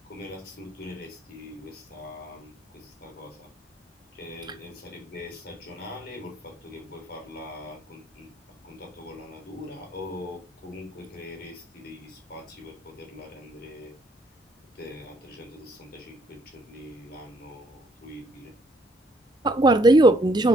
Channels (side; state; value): both; normal; correlation 0.67